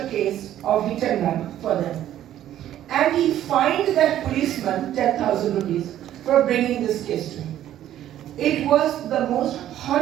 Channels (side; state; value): left; quieter; 12.0 dB